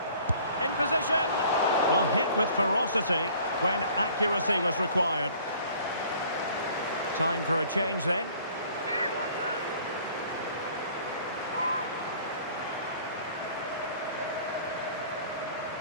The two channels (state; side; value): inverted; both; correlation -0.53